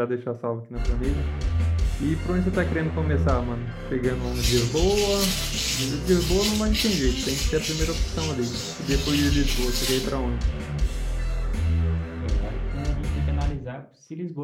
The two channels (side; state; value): both; identical; correlation 1.00